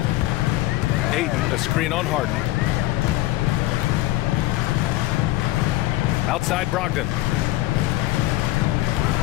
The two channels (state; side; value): quieter; right; 17.1 dB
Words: Ayton, a screen on Harden. Outside Brogdon.